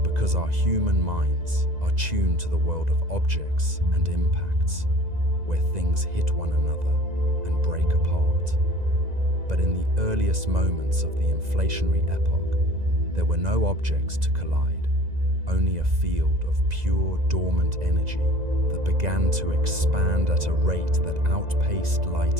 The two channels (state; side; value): late; left; 2.0 ms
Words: because our human minds are attuned to the world of objects and impacts, where things hit one another and break apart. But in the earliest moments of the inflationary epoch, there were no objects to collide, only a field of pure dormant energy that began to expand at a rate that outpaced